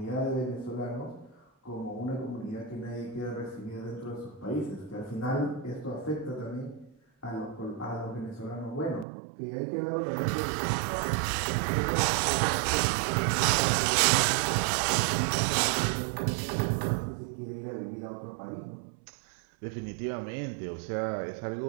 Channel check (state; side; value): drops out; left; at 9.1 s